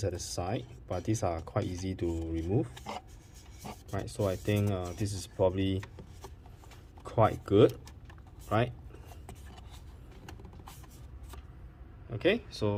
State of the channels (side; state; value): both; identical; correlation 1.00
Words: at the side, but these are quite easy to remove. Right, so I think this is probably quite good, right? Okay,